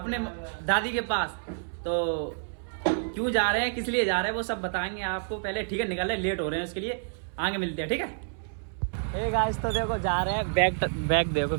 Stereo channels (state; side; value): silent; left; 59 dB below the other